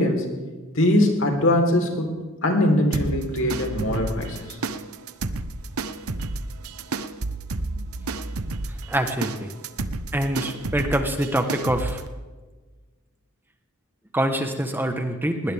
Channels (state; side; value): normal; both; correlation 0.55